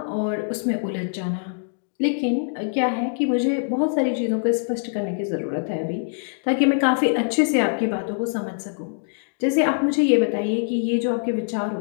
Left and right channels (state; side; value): silent; right; digital silence